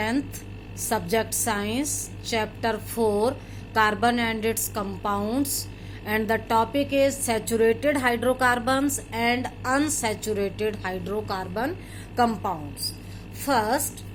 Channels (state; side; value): identical; both; correlation 1.00